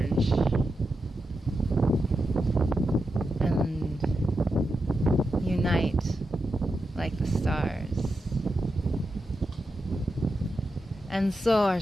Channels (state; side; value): normal; both; correlation 0.88